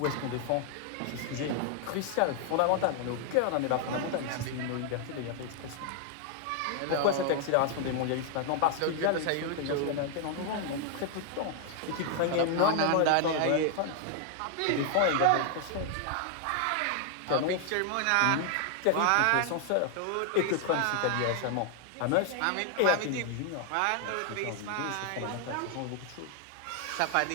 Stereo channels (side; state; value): both; different; correlation 0.00